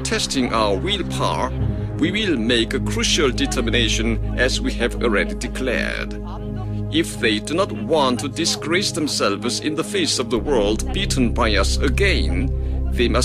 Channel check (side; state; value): both; identical; correlation 1.00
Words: testing our willpower, we will make a crucial determination as we have already declared. If they do not want to disgrace themselves in the face of the world beaten by us again, they